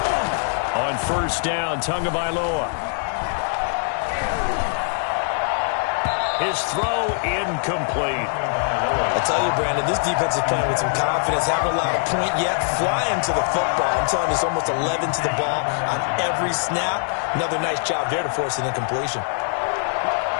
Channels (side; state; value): right; silent; digital silence